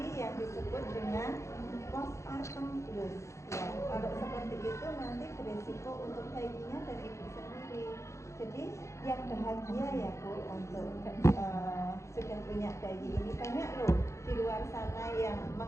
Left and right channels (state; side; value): late; right; 0.14 ms